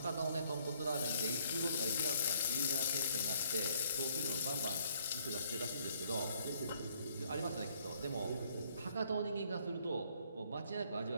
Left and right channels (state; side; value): inverted; both; correlation -0.65